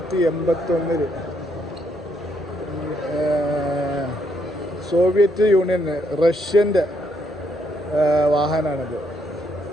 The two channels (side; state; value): both; normal; correlation 0.74